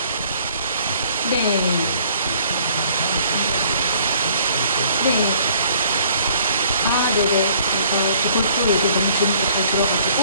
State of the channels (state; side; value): inverted; both; correlation -0.58